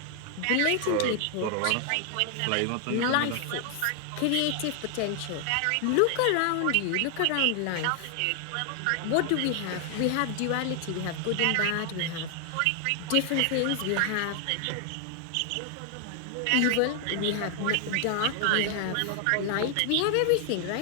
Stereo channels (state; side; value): different; both; correlation 0.00